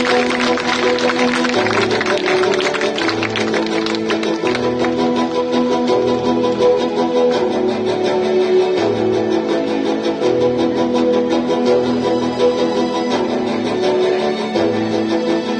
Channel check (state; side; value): identical; both; correlation 1.00